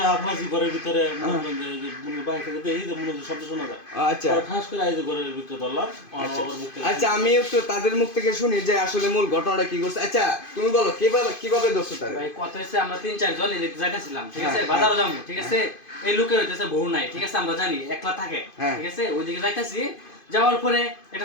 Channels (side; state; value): right; late; 2.5 ms